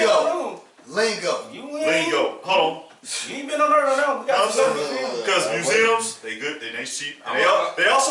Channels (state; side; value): identical; both; correlation 1.00